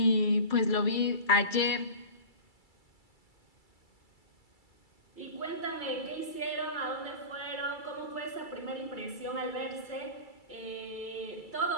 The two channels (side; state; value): right; late; 2.3 ms